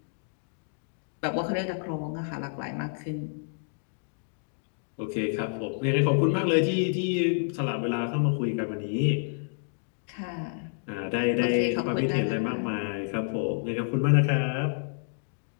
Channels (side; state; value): right; silent; digital silence